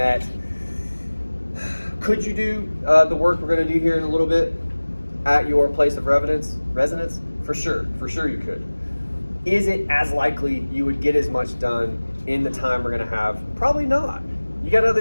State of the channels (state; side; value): inverted; both; correlation -1.00